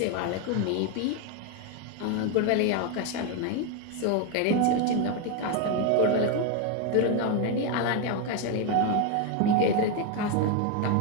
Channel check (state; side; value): different; both; correlation 0.02